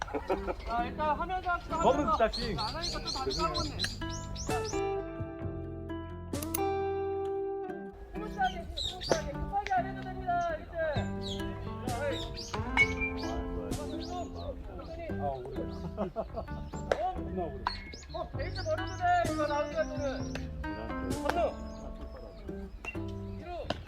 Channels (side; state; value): both; identical; correlation 1.00